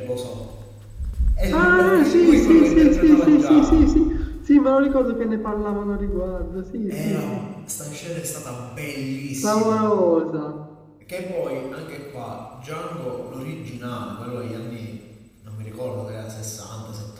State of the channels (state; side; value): identical; both; correlation 1.00